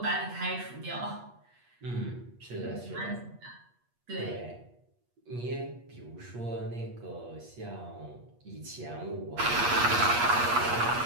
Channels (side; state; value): left; late; 8.4 ms